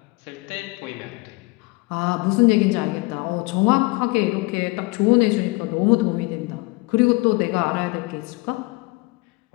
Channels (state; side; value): quieter; right; 24.6 dB